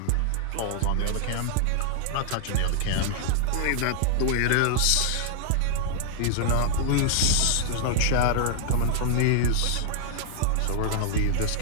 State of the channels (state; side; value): different; both; correlation -0.01